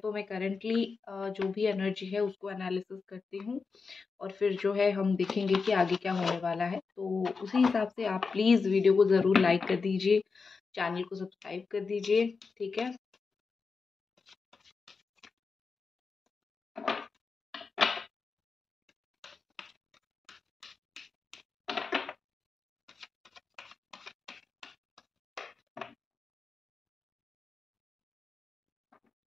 मैं करंटली जो भी एनर्जी है उसको एनालिसिस करती हूँ, और फिर जो है हम देखेंगे कि आगे क्या होने वाला है। तो उसी हिसाब से आप प्लीज़ वीडियो को ज़रूर लाइक कर दीजिए, चैनल को सब्सक्राइब कर दीजिए। ठीक है।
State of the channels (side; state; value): right; quieter; 4.8 dB